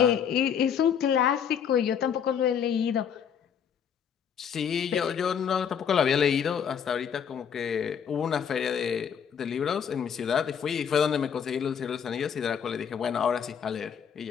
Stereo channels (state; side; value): quieter; right; 7.8 dB